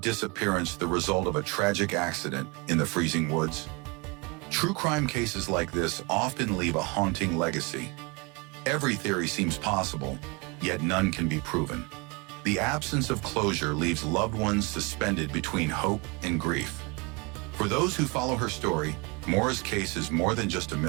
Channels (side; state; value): left; quieter; 28.3 dB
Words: the result of a tragic accident in the freezing woods? True crime cases like this often leave a haunting legacy. Every theory seems possible, yet none can be proven. The absence of closure leaves loved ones suspended between hope and grief. For those who follow her story, Maura's case is more than just a